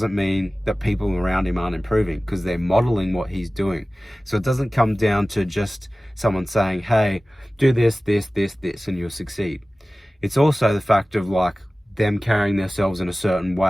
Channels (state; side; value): normal; both; correlation 0.97